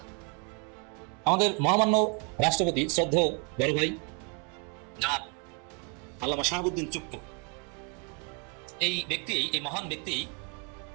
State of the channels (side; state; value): left; quieter; 36.9 dB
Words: আমাদের মহামান্য রাষ্ট্রপতি শ্রদ্ধেয় বড় ভাই জনাব আল্লামা শাহাবুদ্দিন চুপ্পু, এই মহান ব্যক্তি